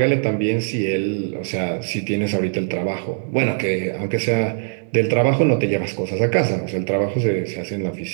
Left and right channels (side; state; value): left; silent; digital silence